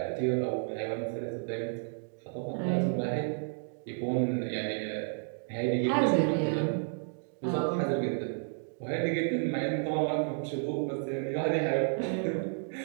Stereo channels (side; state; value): left; silent; 57 dB below the other